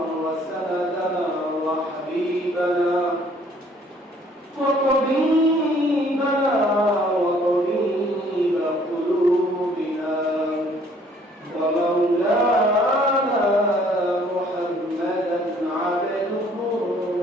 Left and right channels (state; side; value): normal; both; correlation 0.60